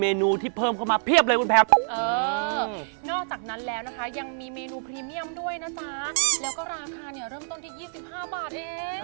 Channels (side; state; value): left; silent; 58 dB below the other